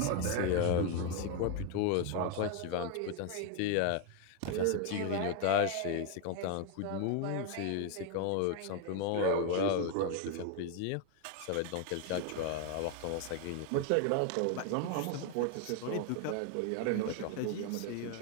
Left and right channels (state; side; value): different; both; correlation 0.01